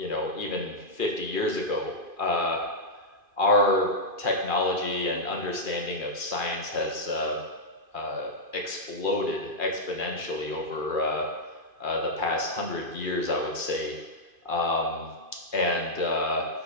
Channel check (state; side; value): late; left; 2.4 ms